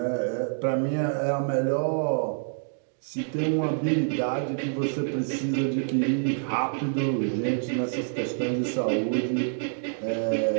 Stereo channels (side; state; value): left; silent; digital silence